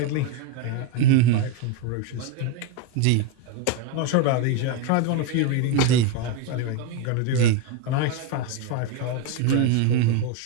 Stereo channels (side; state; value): both; different; correlation 0.02